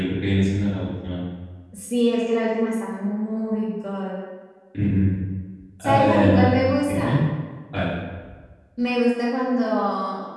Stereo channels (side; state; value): both; identical; correlation 1.00